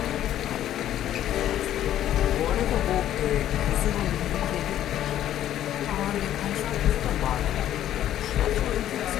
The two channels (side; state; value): right; quieter; 11.9 dB